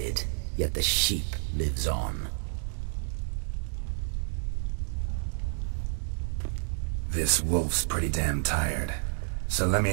yet the sheep lives on. This wolf's pretty damn tired. So let me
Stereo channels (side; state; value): left; silent; digital silence